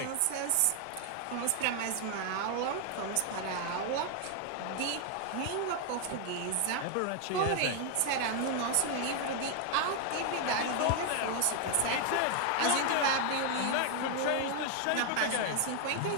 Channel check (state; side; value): different; both; correlation 0.00